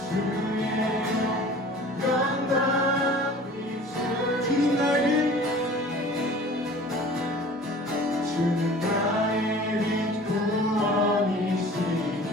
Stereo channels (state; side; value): normal; both; correlation 0.44